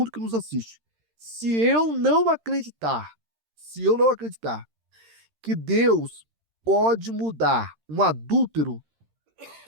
que nos assiste. Se eu não acreditar que Deus pode mudar um adúltero,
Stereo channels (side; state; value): left; late; 13 ms